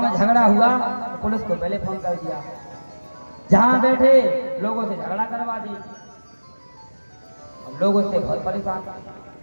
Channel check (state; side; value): inverted; both; correlation -1.00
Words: में झगड़ा हुआ तो पुलिस को पहले फोन कर दिया, जहां बैठे लोगों से झगड़ा करवा दी। अब लोग उससे बहुत परेशान।